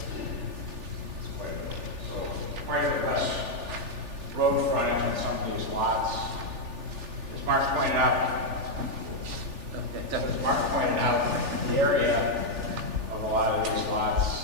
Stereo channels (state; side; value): late; left; 3.4 ms